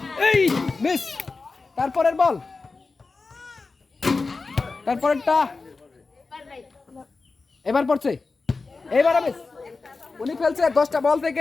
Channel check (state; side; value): quieter; right; 4.0 dB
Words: এই মিস। তারপরের বল, তারপরেরটা, এবার পড়ছে, এইবার মিস। উনি ফেলছে 10টা বল